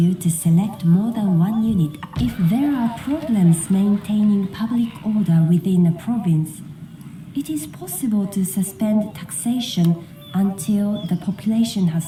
to select more than one unit. If there are problems maintaining public order within a province, it is possible to suspend taxation until the population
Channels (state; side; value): identical; both; correlation 1.00